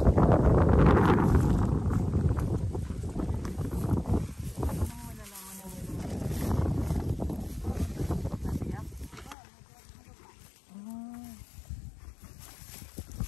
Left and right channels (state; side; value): drops out; right; at 9.3 s